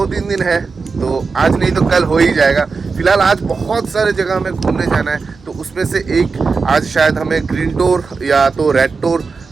दिन है, तो आज नहीं तो कल हो ही जाएगा। फिलहाल आज बहुत सारे जगह हमें घूमने जाना है, तो उसमें से एक आज शायद हमें ग्रीन टूर या तो रेड टूर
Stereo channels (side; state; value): left; quieter; 4.7 dB